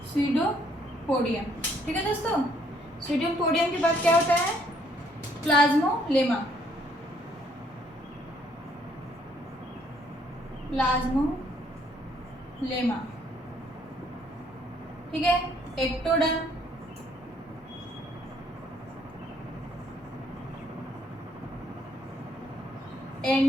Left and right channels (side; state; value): both; normal; correlation 0.67